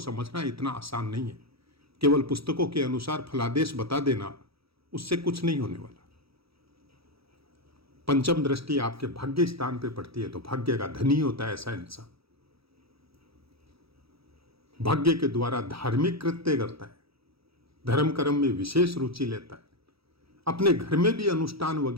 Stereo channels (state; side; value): late; left; 0.76 ms